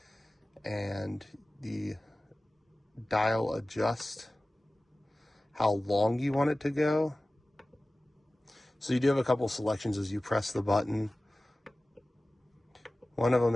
and the dial adjusts how long you want it to go. So you do have a couple selections as you press the button. One of them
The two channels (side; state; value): both; normal; correlation 0.97